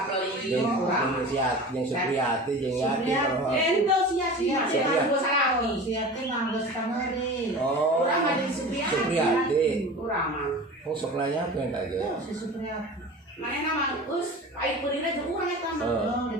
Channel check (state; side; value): normal; both; correlation 0.35